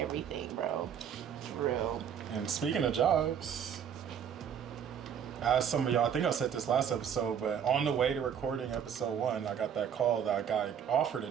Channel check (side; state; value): left; quieter; 8.2 dB